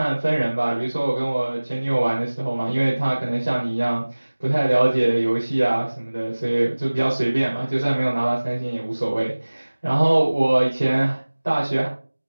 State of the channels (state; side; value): inverted; both; correlation -1.00